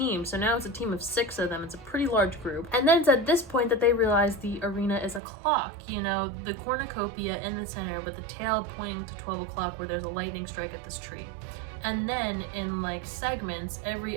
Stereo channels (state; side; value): drops out; left; at 5.2 s